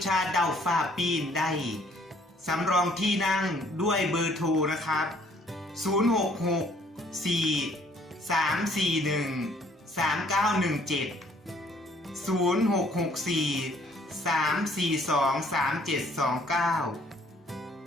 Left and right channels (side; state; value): both; normal; correlation 0.61